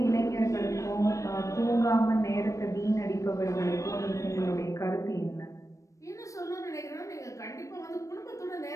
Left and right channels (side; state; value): right; late; 0.15 ms